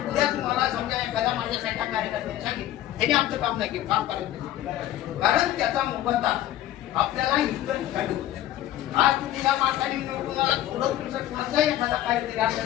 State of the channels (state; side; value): quieter; right; 13.4 dB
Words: उद्या तुम्हाला समजा एखाद्या माझ्यासाठी कार्यकर्त्यांनी सांगितलं त्यांनी आमचं काम नाही केलं काम करायचं कारण त्याचा मोबदला आपल्याला इतर ठिकाणी होतो. आज तुम्ही या मार्गाने निवडून आला थोडं तुमचं कोणाचाही एखादा काहीतरी